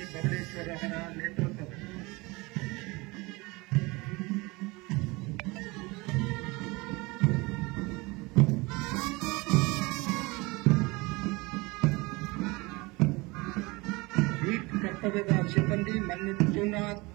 ಬಬಲೇಶ್ವರ ಅವರ ನೇತೃತ್ವ. ಬೀಟ್ ಕರ್ತವ್ಯದ ಸಿಬ್ಬಂದಿ ಮಂಜುನಾಥ್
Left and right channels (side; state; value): left; quieter; 24.2 dB